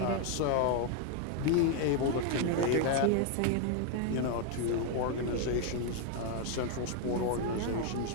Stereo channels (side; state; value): both; different; correlation 0.00